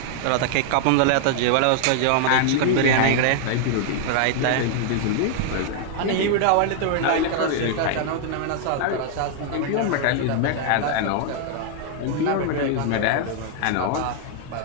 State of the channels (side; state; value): both; different; correlation 0.00